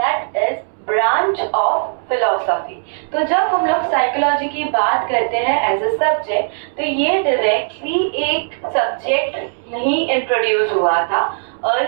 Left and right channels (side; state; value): left; silent; 67 dB below the other